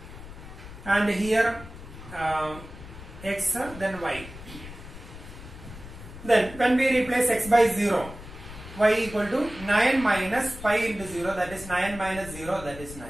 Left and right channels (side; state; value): left; noise; rumble, 14 dB below the sound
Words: and here x, then y. Then when we replace x by 0, y equal to 9 minus pi into 0, that is 9 minus 0, that is 9.